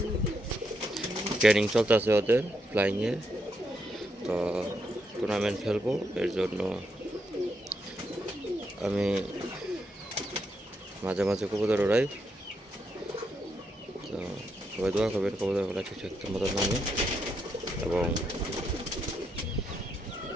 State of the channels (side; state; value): both; normal; correlation 0.80